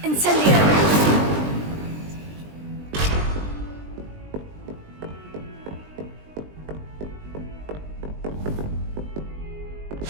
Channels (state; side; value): late; left; 20 ms